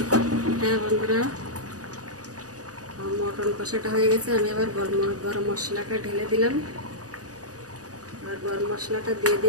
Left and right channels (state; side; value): late; left; 0.67 ms